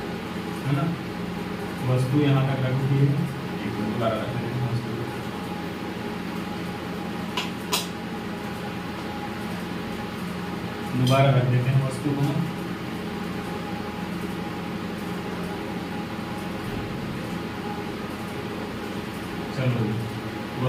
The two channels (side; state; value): both; identical; correlation 1.00